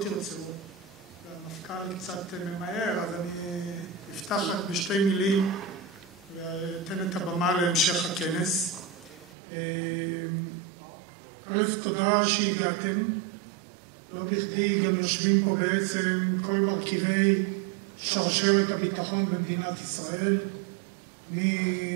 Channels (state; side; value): drops out; left; at 9.3 s